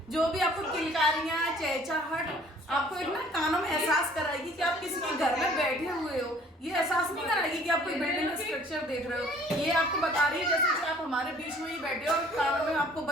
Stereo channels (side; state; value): both; normal; correlation 0.55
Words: जो भी आपको किलकारियाँ, चहचहाहट आपको एक ना कानों में एहसास कराएगी कि आप किसी के घर में बैठे हुए हो। ये एहसास नहीं कराएगी कि आप कोई बिल्डिंग का स्ट्रक्चर देख रहे हो। ये आपको बता रही है जैसे कि आप हमारे बीच में ही बैठे हो और कानों में आपको